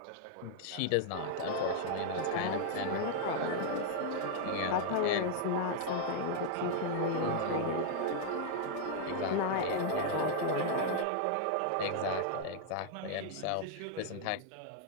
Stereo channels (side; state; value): both; different; correlation 0.00